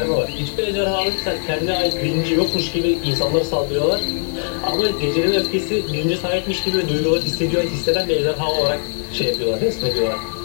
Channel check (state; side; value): silent; right; 57 dB below the other